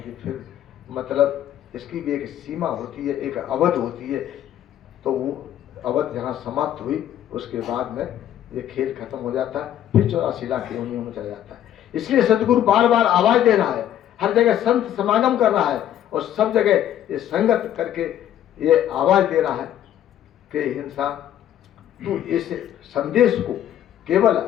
फिर मतलब इसकी भी एक सीमा होती है, एक अवध होती है। तो वो अवध जहाँ समाप्त हुई उसके बाद में ये खेल खत्म हो जाता है, फिर 84 लाख योनियों में चला जाता है। इसलिए सदगुरु बार बार आवाज दे रहा है, हर जगह संत समागम कर रहा है और सब जगह ये संगत करके ये आवाज दे रहा है कि इंसान तू इस संदेश को केवल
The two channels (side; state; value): right; quieter; 11.2 dB